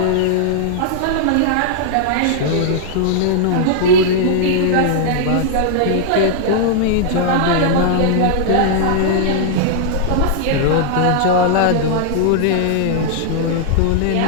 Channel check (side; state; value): both; different; correlation -0.01